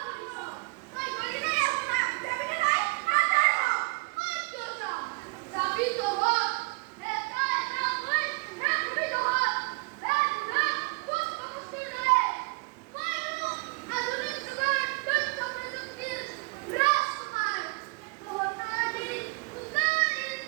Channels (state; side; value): quieter; left; 28.7 dB